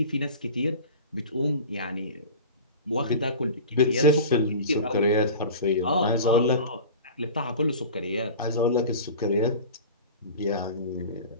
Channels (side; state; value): both; inverted; correlation -0.36